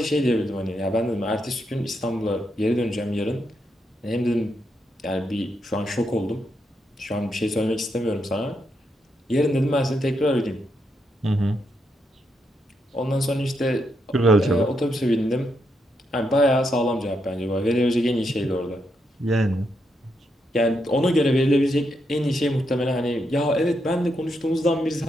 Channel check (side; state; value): both; normal; correlation 0.81